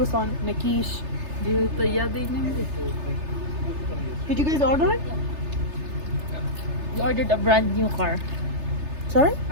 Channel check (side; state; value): left; late; 3.3 ms